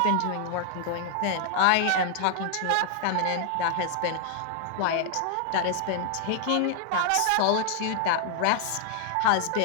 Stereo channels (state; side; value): different; both; correlation 0.00